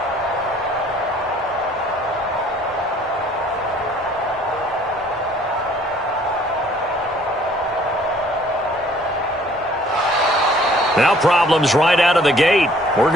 Now problems right out of the gate. We're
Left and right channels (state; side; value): normal; both; correlation 0.58